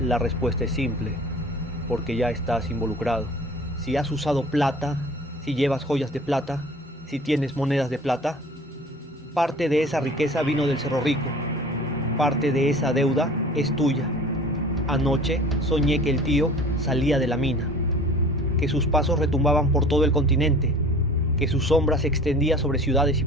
respuesta es simple, porque ya estás involucrado. Si has usado plata, si llevas joyas de plata, si tienes monedas de plata, parte de esa riqueza vino del Cerro Rico, parte de esa deuda es tuya. Anoche soñé que el tío salía de la mina, que sus pasos retumbaban por todo el continente, que su sombra se extendía sobre ciudades y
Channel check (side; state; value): both; normal; correlation 0.45